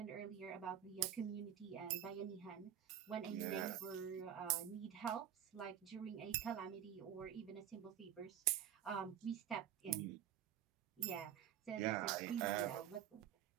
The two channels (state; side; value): quieter; left; 10.2 dB